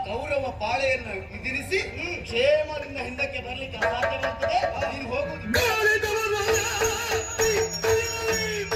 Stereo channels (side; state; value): both; identical; correlation 1.00